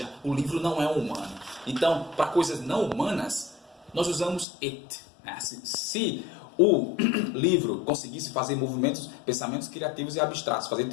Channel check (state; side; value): drops out; right; at 4.5 s